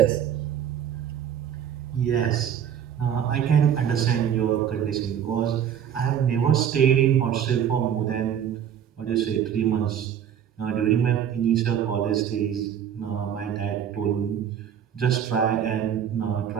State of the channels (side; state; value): left; quieter; 9.1 dB